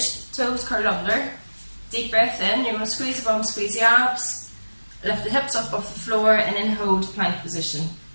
toes curled under. Deep breath in, you're going to squeeze the bum, squeeze the abs, lift the hips up off the floor, and then hold plank position.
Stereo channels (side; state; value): both; inverted; correlation -1.00